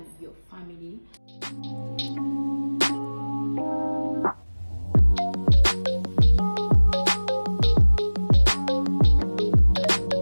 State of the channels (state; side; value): inverted; both; correlation -1.00